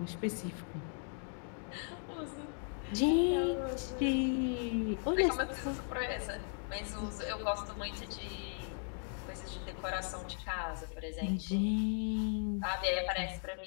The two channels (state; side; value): silent; right; 53 dB below the other